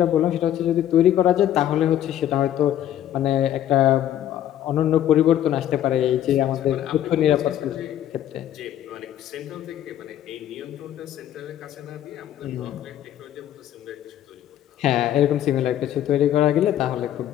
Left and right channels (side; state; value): right; quieter; 11.5 dB